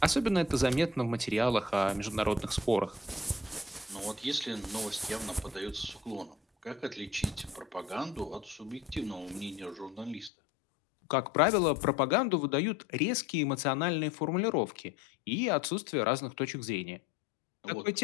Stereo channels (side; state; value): right; drops out; at 10.3 s